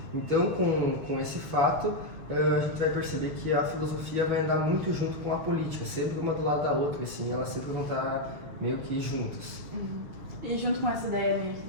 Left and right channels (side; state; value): left; late; 6.9 ms